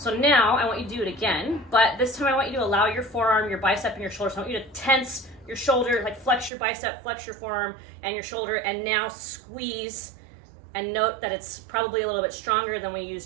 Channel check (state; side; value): drops out; left; at 6.5 s